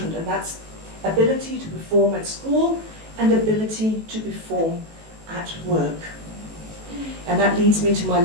and that's ability to perform at school and ability to perform at work. And that leads me to my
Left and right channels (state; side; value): late; left; 18 ms